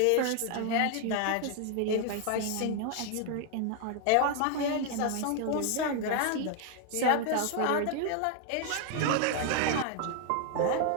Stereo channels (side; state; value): both; different; correlation 0.00